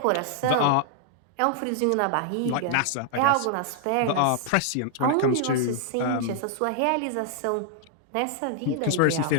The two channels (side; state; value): both; different; correlation -0.01